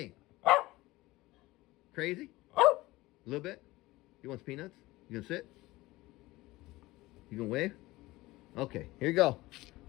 Crazy? A little bit? You want some peanuts? You gonna sit? You gonna wave? Okay, here you go.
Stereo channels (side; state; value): right; quieter; 19.4 dB